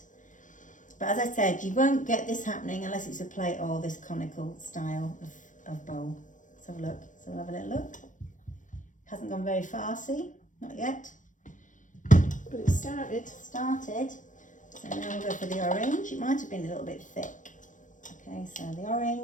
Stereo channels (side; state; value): right; late; 0.37 ms